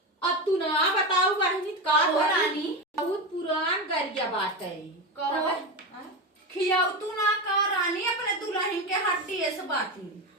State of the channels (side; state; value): both; normal; correlation 0.18